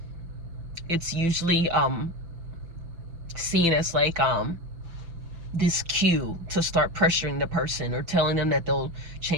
it's usually seen as like this cue to start pressuring the person, or telling them that they'll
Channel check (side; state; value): left; late; 6.0 ms